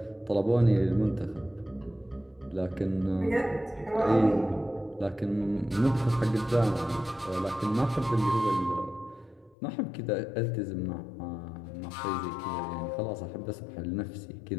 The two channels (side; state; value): right; drops out; at 9.6 s